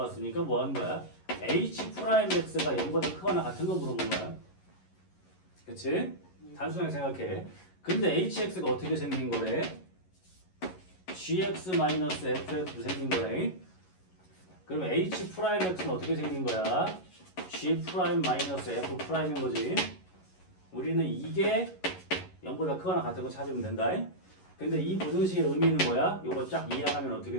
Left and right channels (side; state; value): right; late; 11 ms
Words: 뭐 하는 거야? h'x가 0보다 크거나 같은 거 물어본 거야. 그치? 단순하게 생각해. 근데 hx가 어떻게 생긴 거래? gx-fx로 생긴 거래. 그럼 h'x는 어떻게 생긴 거야? g'-f'인 거지. 우리는 이게 0보다 크거나 같은 거 찾으면 된다. 근데 이 부등식의 의미는 뭐야? 요거 쫙 이해하면